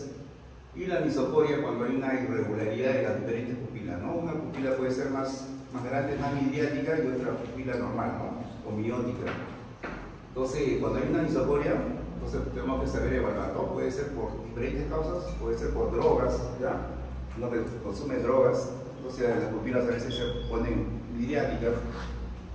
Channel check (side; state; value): both; identical; correlation 1.00